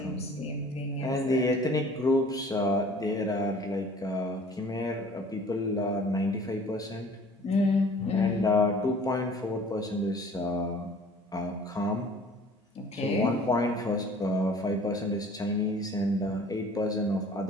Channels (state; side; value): normal; both; correlation 0.50